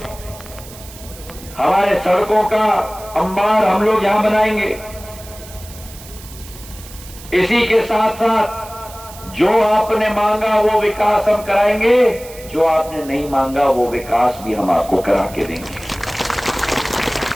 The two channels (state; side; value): noise; right; hiss, 18 dB below the sound